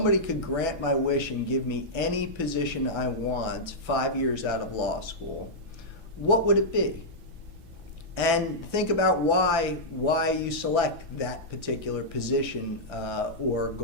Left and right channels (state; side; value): late; left; 6.0 ms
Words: could grant my wish and give me any position I want 5 years out of law school, what would it be? And think about why you select that particular position or